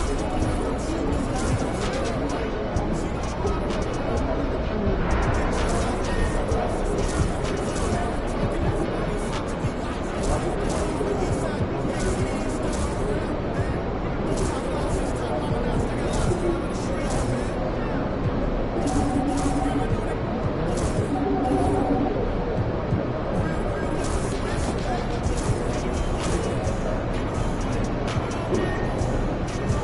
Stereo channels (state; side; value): identical; both; correlation 1.00